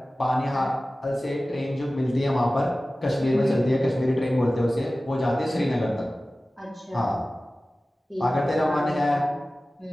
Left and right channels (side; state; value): both; normal; correlation 0.96